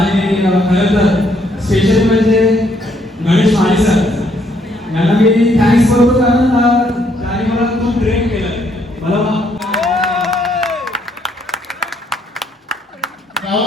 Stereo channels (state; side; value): normal; both; correlation 0.70